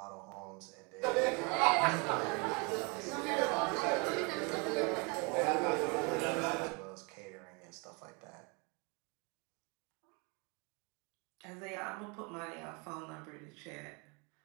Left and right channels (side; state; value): left; quieter; 31.5 dB